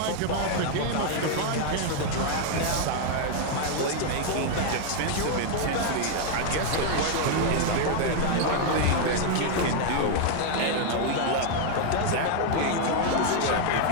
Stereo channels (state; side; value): different; both; correlation 0.00